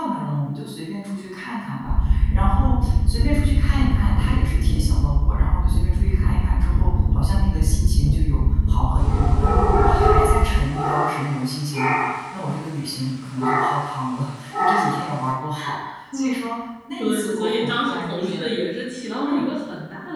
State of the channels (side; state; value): both; identical; correlation 1.00